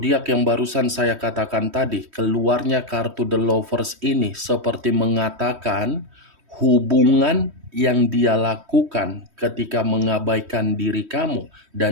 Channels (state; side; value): late; left; 3.1 ms